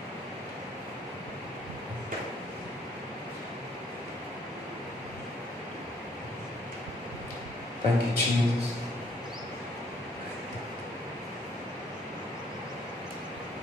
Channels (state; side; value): normal; both; correlation 0.64